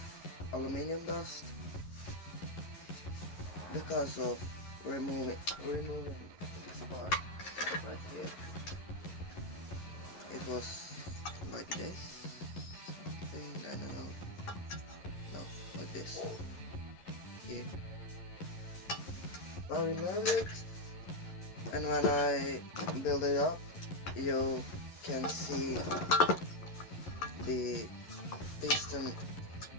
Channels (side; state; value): right; late; 11 ms